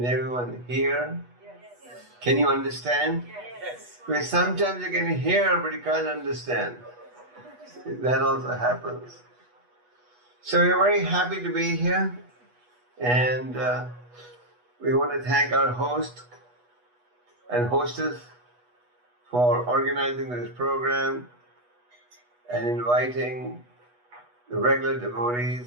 everyone hear? Yes. Can you understand? Yes. Because sometimes you can hear but you can't understand. That also happens. So we're very happy to be here, and we want to thank our host and hostess for organizing this program and inviting the regular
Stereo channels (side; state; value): left; late; 8.2 ms